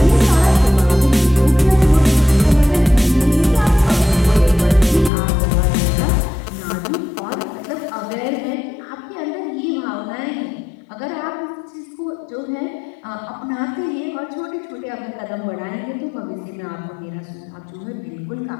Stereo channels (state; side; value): drops out; right; at 5.1 s